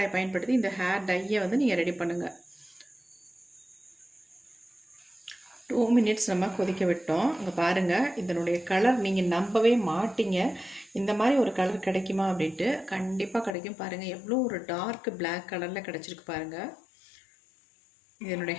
பயன்படுத்தி இந்த ஹேர் டையை வந்து நீங்கள் ரெடி பண்ணுங்கள். 2 மினிட்ஸ் நம்ம கொதிக்க விட்டோம். இங்கே பாருங்கள், இதனுடைய கலர் நீங்கள் நம்பவே மாட்டீங்க. இந்த மாதிரி ஒரு கலர் கிடைக்குமா அப்படின்ட்டு. கண்டிப்பாக கிடைக்கும். பாருங்கள், எவ்வளோ ஒரு டார்க் பிளாக் கலரில் கிடச்சிருக்கு பாருங்கள். என்னுடைய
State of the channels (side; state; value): right; drops out; at 13.6 s